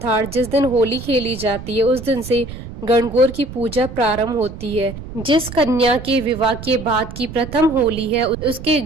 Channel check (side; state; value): right; noise; rumble, 12 dB below the sound